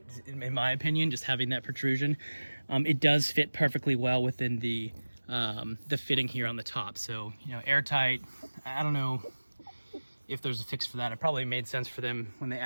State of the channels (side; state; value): both; inverted; correlation -1.00